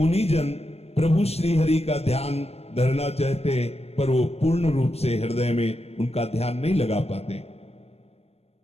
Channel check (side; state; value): right; late; 0.30 ms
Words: प्रभु श्री हरि का ध्यान धरना चाहते हैं, पर वो पूर्ण रूप से हृदय में उनका ध्यान नहीं लगा पाते।